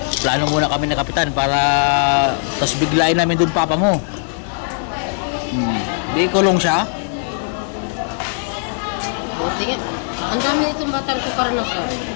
Plano muna kami ni Kapitan para tapos biglain namin doon papa mo. Di kulong siya. tingin, ang dami itong batang ko karanasan.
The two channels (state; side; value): silent; right; 62 dB below the other